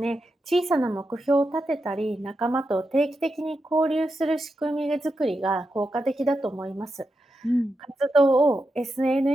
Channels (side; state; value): both; normal; correlation 0.87